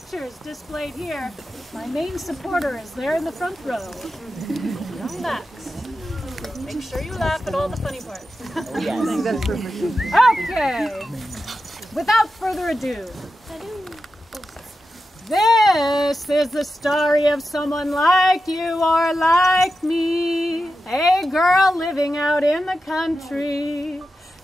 displayed here. My main supporter is there in the front row. Young Max. Make sure you laugh at all the funny parts. Okay. Without further ado, this is the story of someone like you or like me, a girl living out in the country.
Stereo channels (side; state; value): both; normal; correlation 0.91